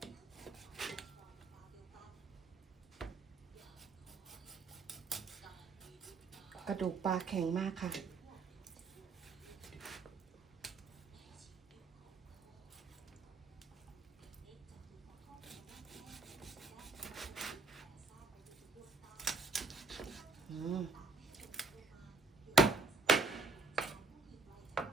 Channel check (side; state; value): left; quieter; 4.0 dB